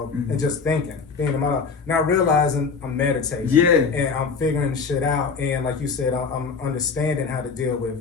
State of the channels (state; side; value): quieter; right; 5.2 dB